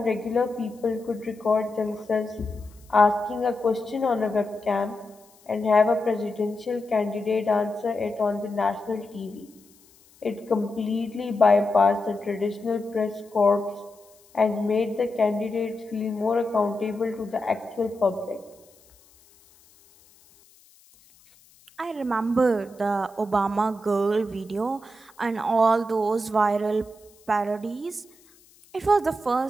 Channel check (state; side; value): noise; left; hiss, 29 dB below the sound